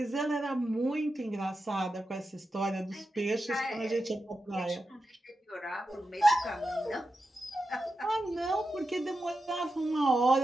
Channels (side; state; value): both; normal; correlation 0.90